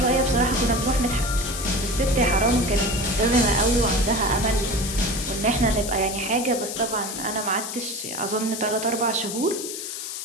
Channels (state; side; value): noise; left; hiss, 6 dB below the sound